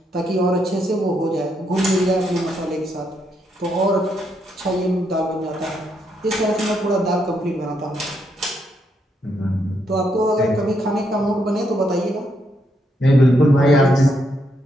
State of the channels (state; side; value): normal; both; correlation 0.78